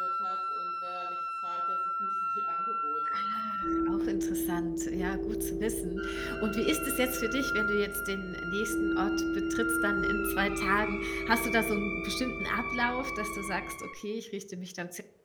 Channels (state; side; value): identical; both; correlation 1.00